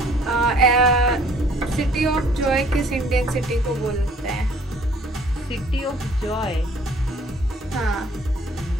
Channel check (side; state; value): both; normal; correlation 0.57